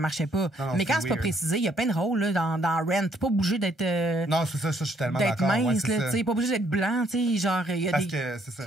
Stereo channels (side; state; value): both; normal; correlation 0.68